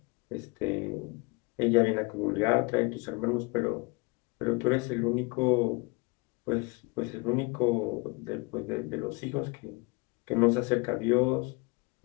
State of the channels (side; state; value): right; quieter; 27.9 dB